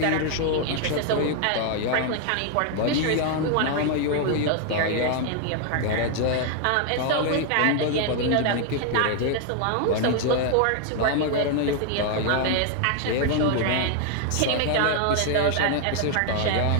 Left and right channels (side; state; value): both; different; correlation 0.00